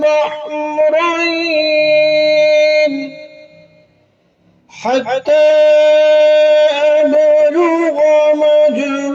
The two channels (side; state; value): both; identical; correlation 1.00